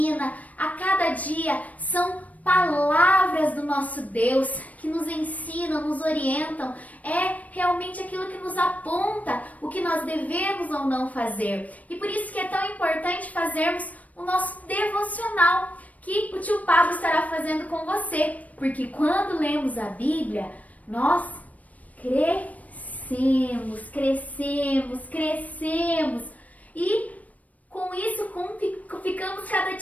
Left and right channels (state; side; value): late; right; 0.071 ms